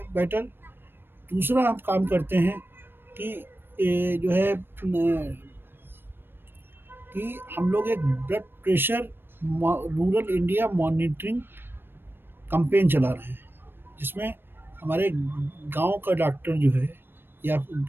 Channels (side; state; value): left; late; 0.099 ms